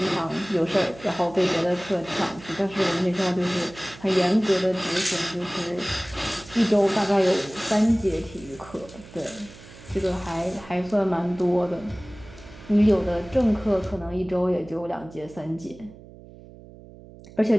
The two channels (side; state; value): right; noise; hum, 19 dB below the sound